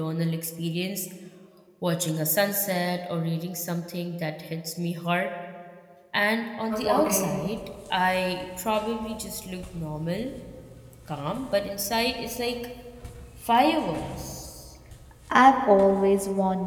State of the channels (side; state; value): both; identical; correlation 1.00